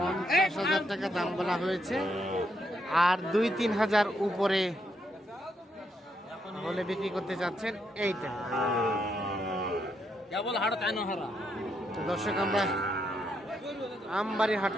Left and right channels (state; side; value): normal; both; correlation 0.78